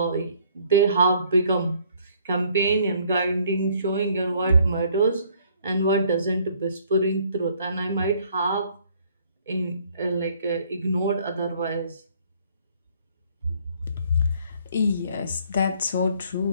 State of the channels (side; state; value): both; inverted; correlation -0.62